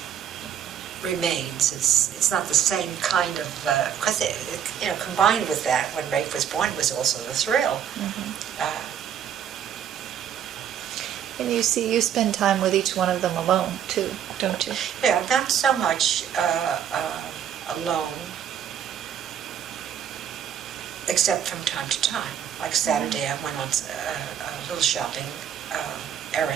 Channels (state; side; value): quieter; left; 9.1 dB